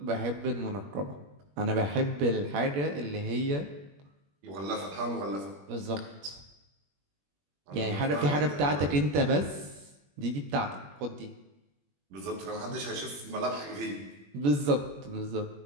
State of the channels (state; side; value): late; left; 21 ms